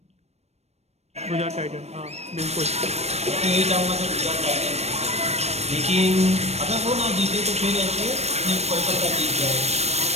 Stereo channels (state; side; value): late; left; 0.31 ms